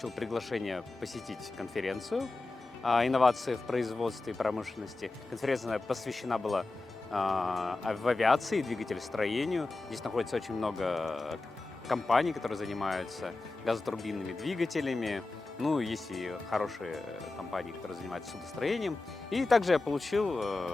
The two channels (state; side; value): quieter; right; 3.3 dB